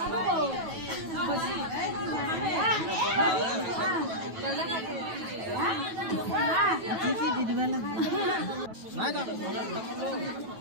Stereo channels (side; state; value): left; late; 9.2 ms